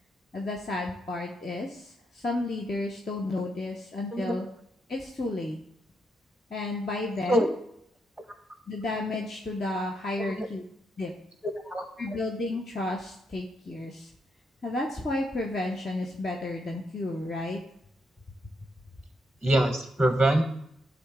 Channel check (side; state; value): both; normal; correlation 0.79